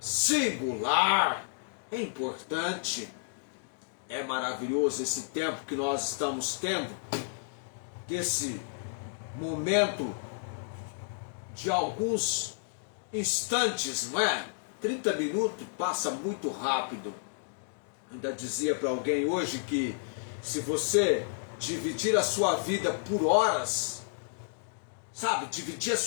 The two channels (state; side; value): silent; right; digital silence